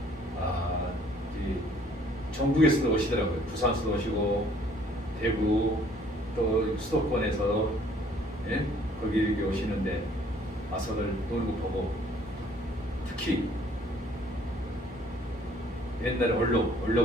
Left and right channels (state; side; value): normal; both; correlation 0.59